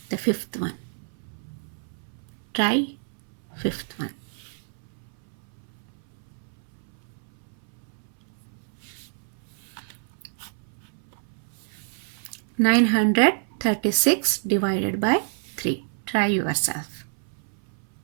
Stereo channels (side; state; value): left; silent; 60 dB below the other